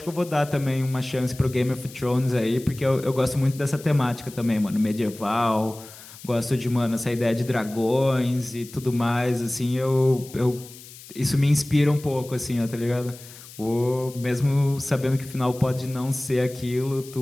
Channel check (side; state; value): left; noise; hiss, 18 dB below the sound